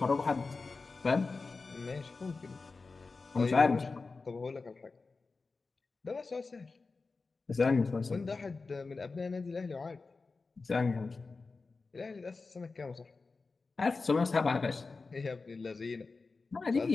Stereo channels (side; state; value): right; quieter; 4.1 dB